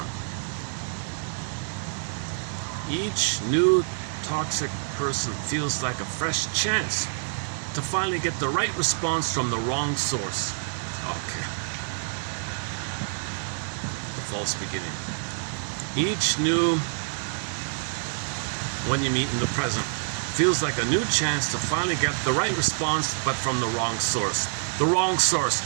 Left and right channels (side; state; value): left; silent; digital silence